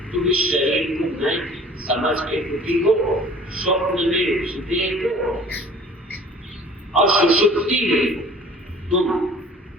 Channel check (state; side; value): normal; both; correlation 0.49